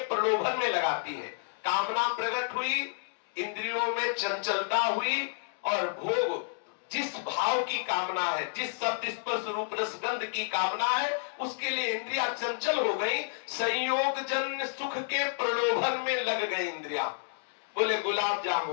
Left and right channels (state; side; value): silent; right; digital silence